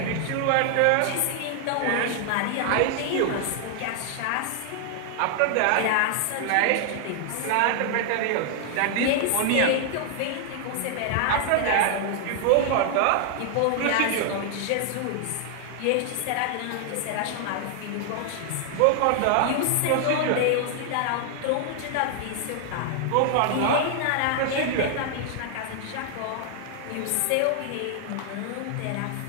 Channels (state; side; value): different; both; correlation 0.00